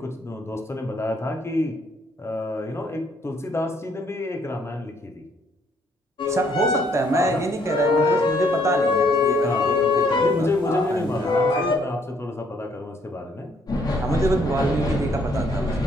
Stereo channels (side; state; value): both; normal; correlation 0.67